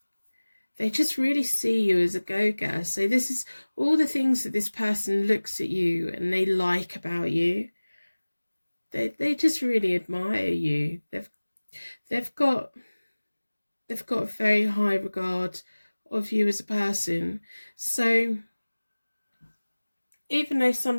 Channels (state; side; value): inverted; both; correlation -1.00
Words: They just really see you as a go-getter. So this is all the things that this person looks at you and they like about you. They just really admire you. They've got a very high regard of you as a person. So even though